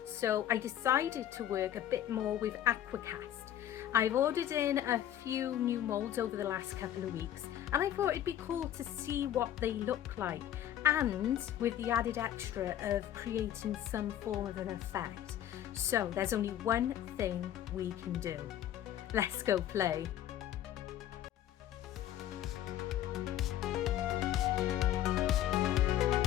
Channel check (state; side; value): quieter; right; 11.6 dB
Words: so I decided to work a bit more with Aquacast. I've ordered in a few new molds over the last couple of weeks and I thought it'd be cool to see what they look like, and with the added extra of creating some form of an effect. So there's only one thing we can do. Let's go play.